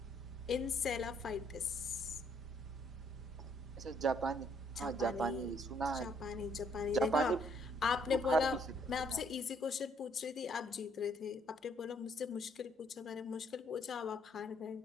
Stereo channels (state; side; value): normal; both; correlation 0.68